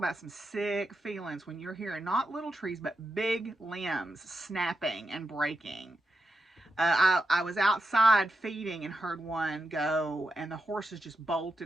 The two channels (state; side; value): normal; both; correlation 0.87